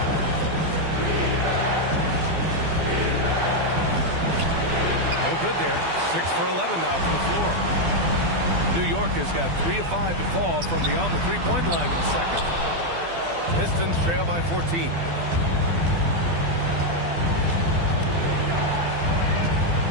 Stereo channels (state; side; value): late; left; 12 ms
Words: No good there. 6 for 11 now from the floor. New York has got 3 of 5 to fall from beyond the three-point line in the second. Pistons trail by 14.